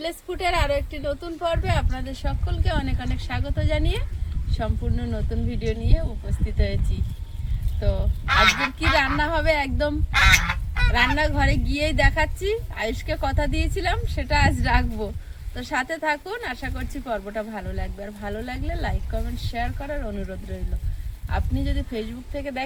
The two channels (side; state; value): both; identical; correlation 1.00